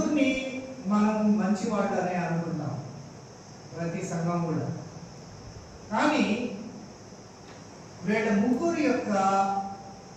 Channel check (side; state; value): both; identical; correlation 1.00